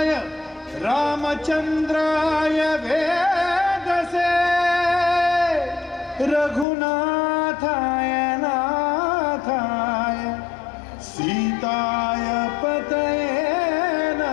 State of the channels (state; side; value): drops out; right; at 6.7 s